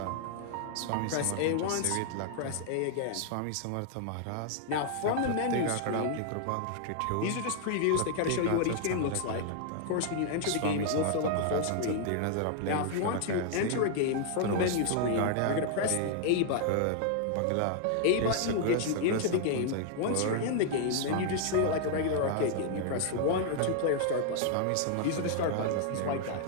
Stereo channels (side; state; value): both; different; correlation 0.00